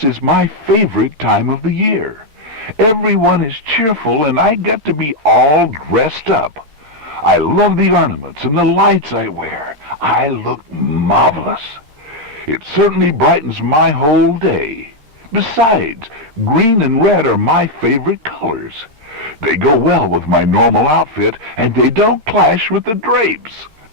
is my favorite time of the year. Everyone is cheerful and I get to be all dressed up. I love the ornaments and the lights I wear. I look marvelous. It certainly brightens my whole day. Besides, green and red are my favorite colors. They go well with my normal outfit, and they don't clash with the drapes.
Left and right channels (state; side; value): late; left; 13 ms